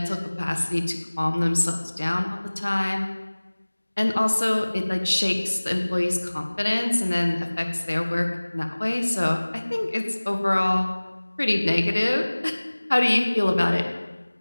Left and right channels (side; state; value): both; inverted; correlation -1.00